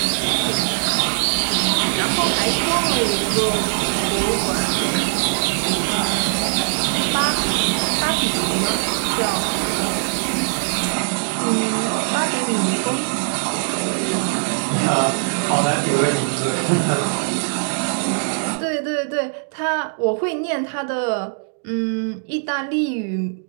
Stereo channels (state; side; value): silent; left; digital silence